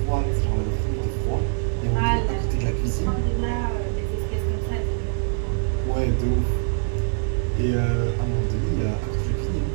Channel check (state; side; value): silent; left; digital silence